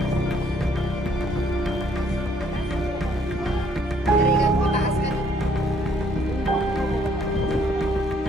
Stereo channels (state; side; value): normal; both; correlation 0.65